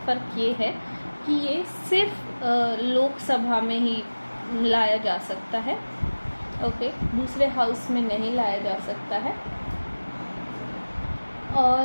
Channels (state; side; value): inverted; both; correlation -1.00